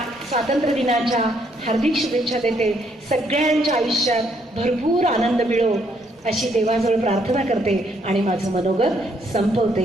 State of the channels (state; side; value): normal; both; correlation 0.71